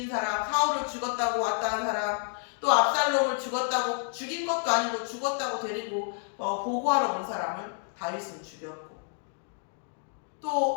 사람, 사울을 죽었다고 왔다는 사람 또 압살롬을 죽인 것도 아니고 죽었다고 데리고 보고하러 온 사람을 다윗은 죽였고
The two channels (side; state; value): right; silent; 58 dB below the other